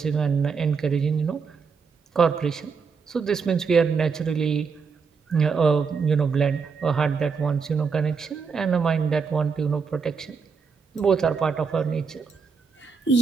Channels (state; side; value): quieter; left; 5.5 dB